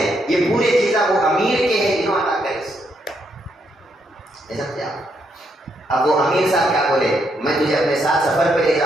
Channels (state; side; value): normal; both; correlation 0.77